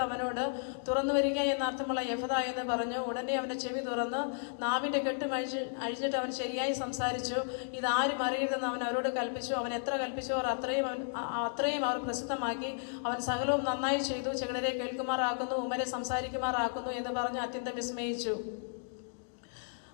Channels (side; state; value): right; silent; digital silence